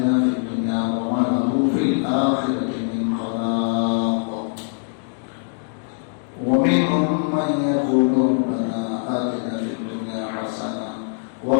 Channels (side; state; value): right; silent; digital silence